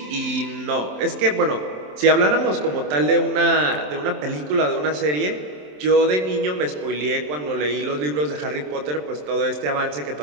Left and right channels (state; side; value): late; left; 27 ms